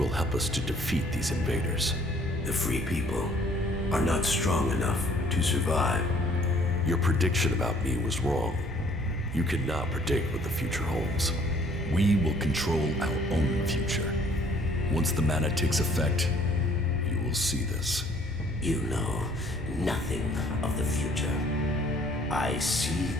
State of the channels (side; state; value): both; normal; correlation 0.59